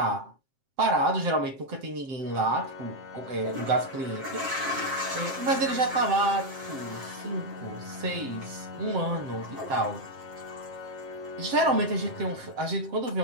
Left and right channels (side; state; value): left; late; 7.5 ms